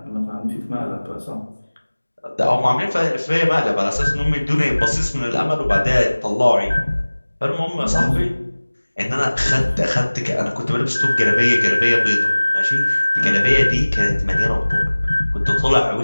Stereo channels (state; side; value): inverted; both; correlation -1.00